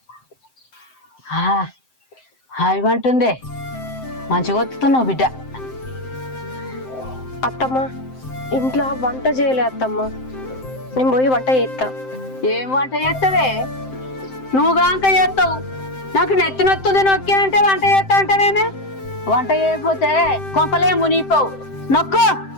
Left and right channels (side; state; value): right; late; 7.7 ms